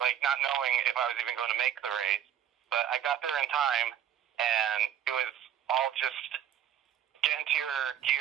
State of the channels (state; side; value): quieter; left; 10.1 dB